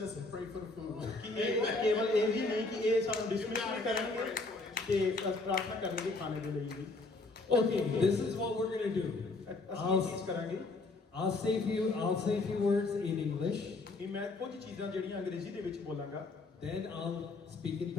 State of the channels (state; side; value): quieter; right; 3.4 dB